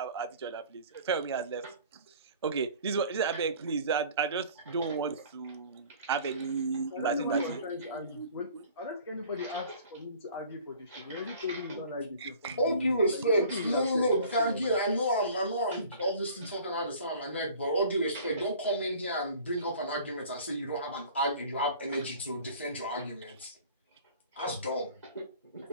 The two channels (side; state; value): both; inverted; correlation -0.48